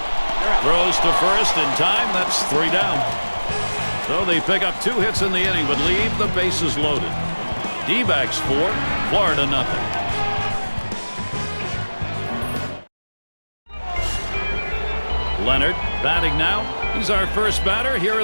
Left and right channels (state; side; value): inverted; both; correlation -1.00